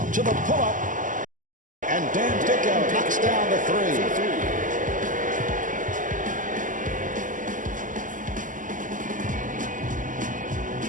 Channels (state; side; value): late; left; 0.38 ms